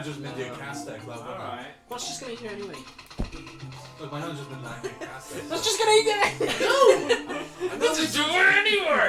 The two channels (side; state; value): both; identical; correlation 1.00